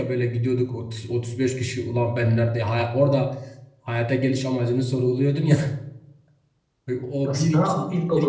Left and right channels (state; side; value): identical; both; correlation 1.00